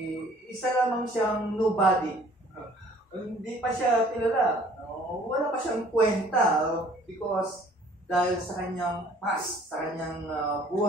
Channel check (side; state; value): both; normal; correlation 0.55